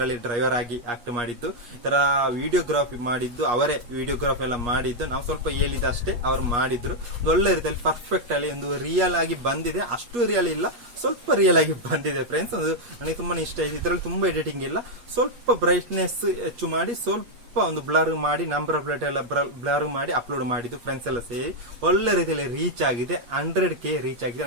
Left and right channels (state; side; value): late; left; 8.4 ms